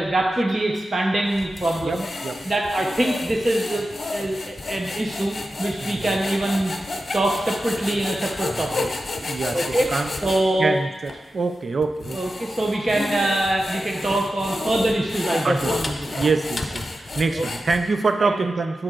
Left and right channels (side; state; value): both; normal; correlation 0.92